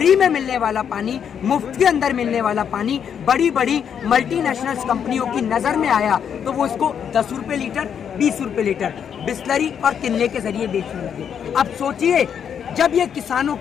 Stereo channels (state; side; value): quieter; right; 8.0 dB